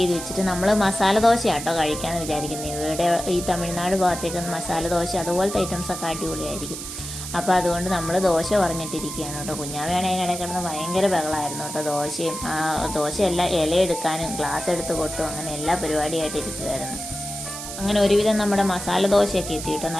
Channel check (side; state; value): right; noise; hiss, 8 dB below the sound